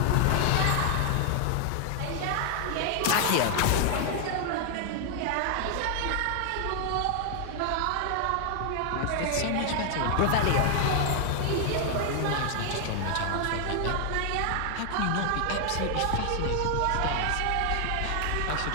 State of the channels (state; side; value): different; both; correlation 0.00